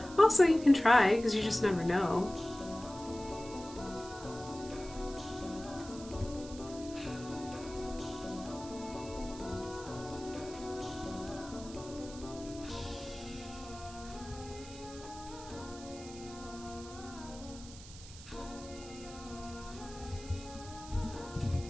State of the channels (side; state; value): right; noise; hiss, 16 dB below the sound